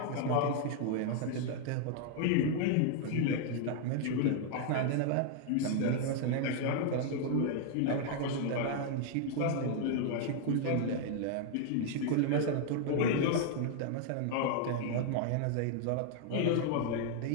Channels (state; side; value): different; both; correlation 0.00